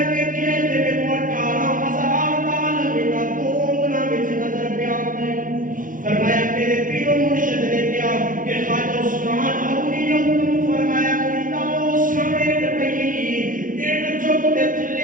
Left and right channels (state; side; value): late; left; 0.39 ms